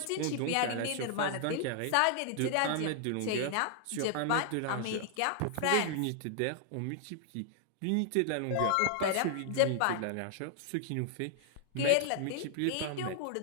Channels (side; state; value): both; different; correlation 0.00